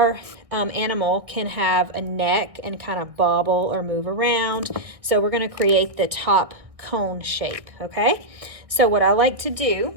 animal can have a neck and kind of bobble or move around. So we're going to create the top cone shape, okay? So what I like to do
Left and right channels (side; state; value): left; late; 1.6 ms